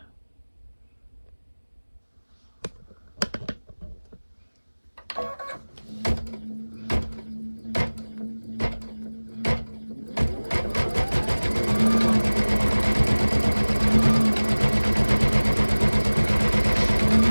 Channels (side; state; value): both; inverted; correlation -1.00